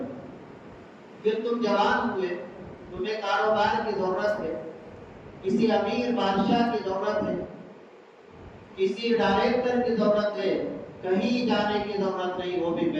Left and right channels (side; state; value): both; identical; correlation 1.00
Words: پھر تم جوان ہوئے، تمہیں کاروبار کی ضرورت ہے، کسی امیر بادشاہ کی ضرورت ہے، کسی ڈائریکٹر کی ضرورت ہے، کہیں جانے کی ضرورت نہیں، وہ بھی